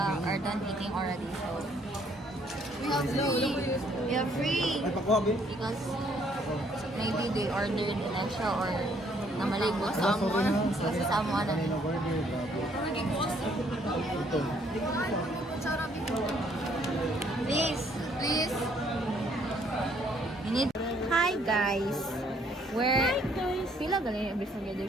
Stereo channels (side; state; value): both; normal; correlation 0.65